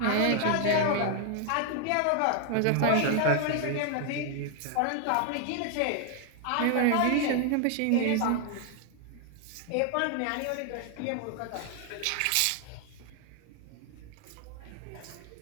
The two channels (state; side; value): different; both; correlation 0.00